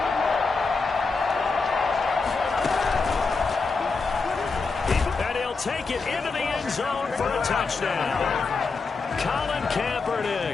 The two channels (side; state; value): right; quieter; 4.4 dB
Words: And he'll take it into the end zone for a touchdown. Colin